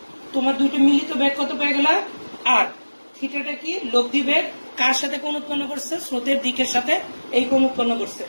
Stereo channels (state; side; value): inverted; both; correlation -1.00